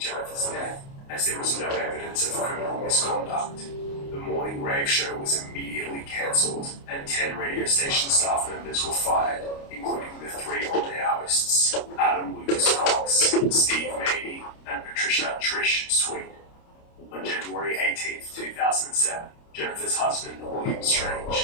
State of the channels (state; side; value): late; right; 29 ms